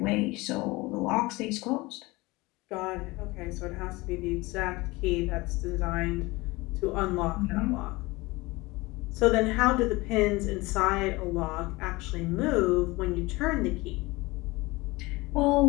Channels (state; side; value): quieter; right; 22.2 dB